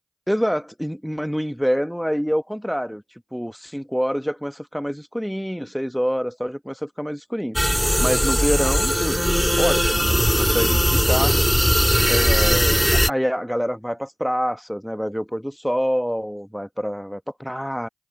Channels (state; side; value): identical; both; correlation 1.00